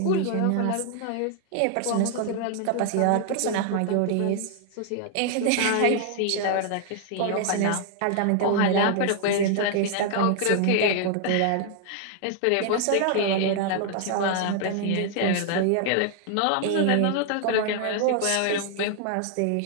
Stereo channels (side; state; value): both; different; correlation 0.00